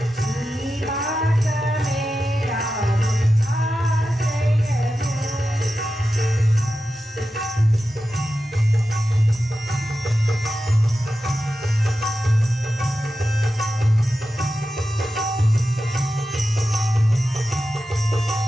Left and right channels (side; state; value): both; normal; correlation 0.92